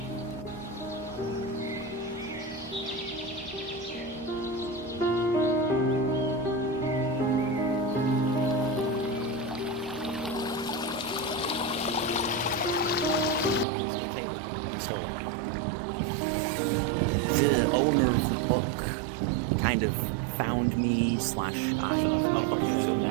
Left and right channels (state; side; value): drops out; left; at 13.7 s